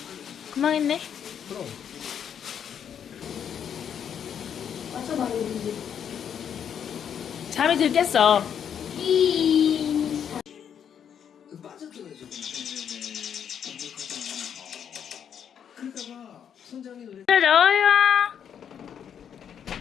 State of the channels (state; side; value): quieter; right; 8.4 dB